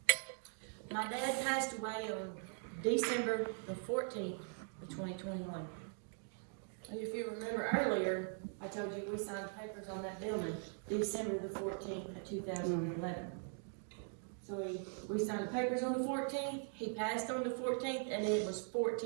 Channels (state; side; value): silent; left; 50 dB below the other